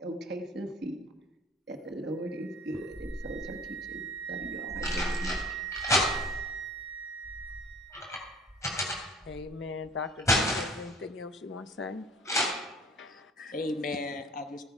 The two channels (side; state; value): both; normal; correlation 0.48